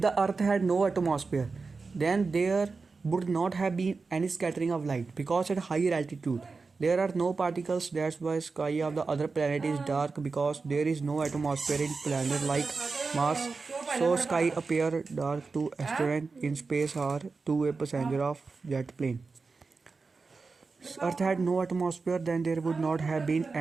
earth had no atmosphere then there would not have been any scattering of light because at higher altitude there are no particles. That's why sky of the other planet is dark, because there is no atmosphere in planet like Mars, so sky appear dark to astronaut in space or to a passenger of jet plane. Earth had no atmosphere, then there would not have been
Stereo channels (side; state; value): left; quieter; 4.3 dB